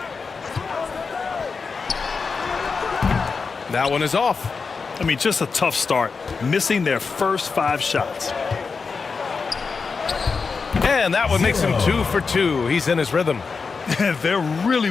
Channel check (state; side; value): quieter; right; 4.9 dB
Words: That one is off. I mean, just a tough start, missing their first 5 shots. And that one makes him 2 for 2. He's in his rhythm. They're really